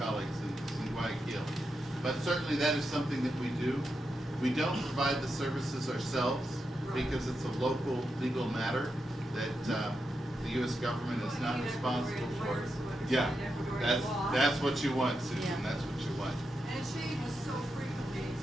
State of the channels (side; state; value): both; normal; correlation 0.86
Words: colleagues in Guayaquil. But certainly that is something that we do. We don't provide the services ourselves because it's a local legal matter that the U.S. government is not responsible for. Yeah, that's what you want, Susan. Yeah. That's what you want. And it's shame was so frequently,